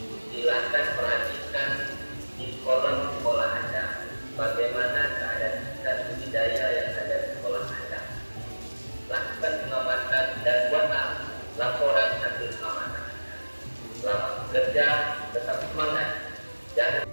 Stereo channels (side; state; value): both; inverted; correlation -1.00